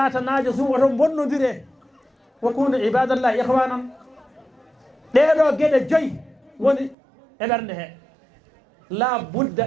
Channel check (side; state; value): left; drops out; at 7.0 s